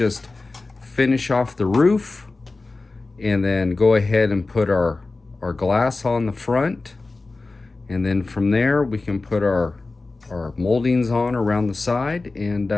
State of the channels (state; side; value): quieter; right; 3.5 dB